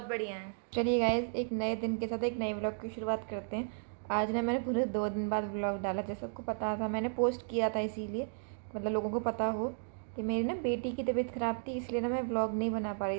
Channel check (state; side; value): silent; left; digital silence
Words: बढ़िया हैं। चलिए गाइज, एक नए दिन के साथ एक नए व्लॉग की शुरुआत करते हैं। आज ना मैंने पूरे 2 दिन बाद व्लॉग डाला। जैसे सबको पता था, मैंने पोस्ट किया था इसीलिए मतलब लोगों को पता हो कि मेरी ना बेटी की तबीयत ख़राब थी, इसलिए ना मैं व्लॉग नहीं बना पा